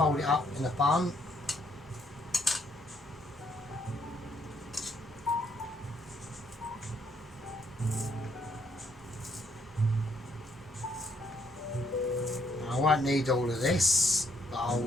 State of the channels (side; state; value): both; normal; correlation 0.69